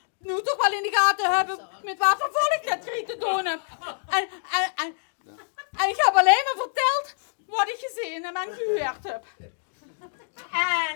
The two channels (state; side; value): silent; right; digital silence